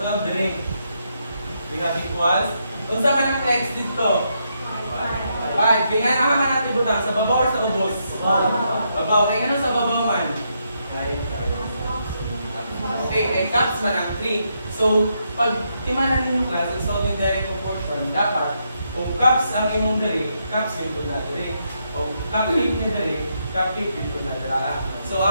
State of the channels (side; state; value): both; inverted; correlation -0.79